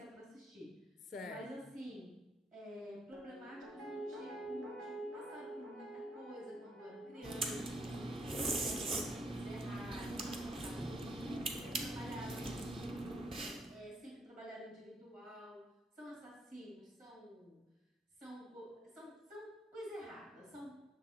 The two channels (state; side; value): normal; both; correlation 0.72